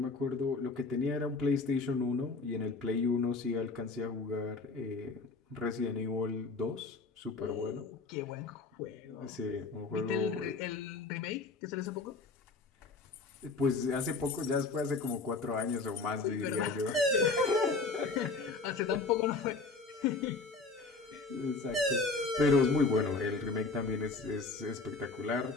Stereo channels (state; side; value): quieter; right; 3.9 dB